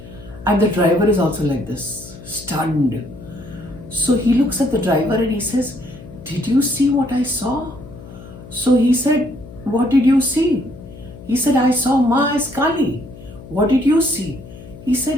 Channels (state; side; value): noise; left; hum, 17 dB below the sound